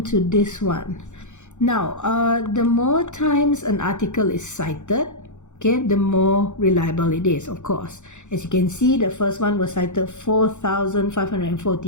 to this one. Now, the more times an article is cited, okay, the more reliable it is, of course. As you can see, the first one was cited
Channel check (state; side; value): late; right; 0.84 ms